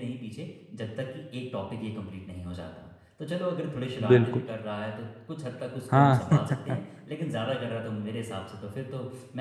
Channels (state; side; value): identical; both; correlation 1.00